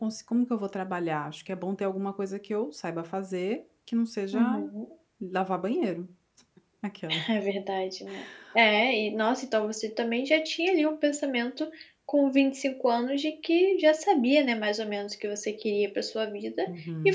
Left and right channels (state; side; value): identical; both; correlation 1.00